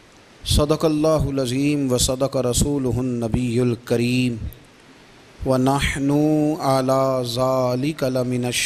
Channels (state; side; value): identical; both; correlation 1.00